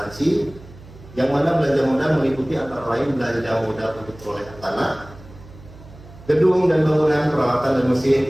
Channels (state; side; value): noise; right; hum, 20 dB below the sound